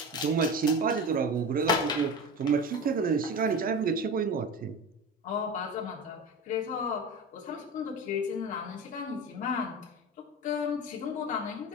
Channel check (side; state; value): both; normal; correlation 0.28